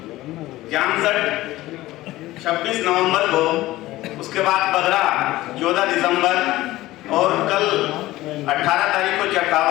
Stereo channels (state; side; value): quieter; right; 17.1 dB